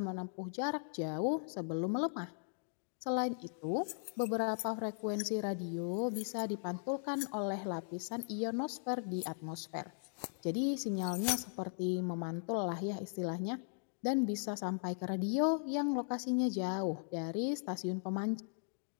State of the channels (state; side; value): silent; right; digital silence